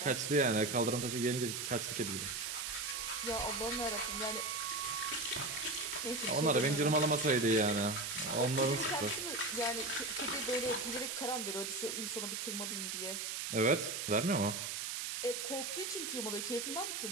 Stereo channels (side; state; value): right; noise; hiss, 3 dB below the sound